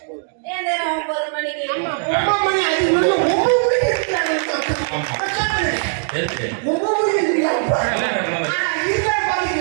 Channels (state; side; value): silent; left; 66 dB below the other